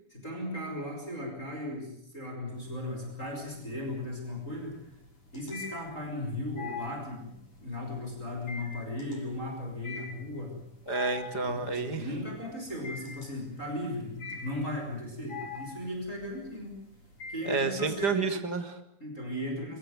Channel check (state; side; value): late; right; 7.1 ms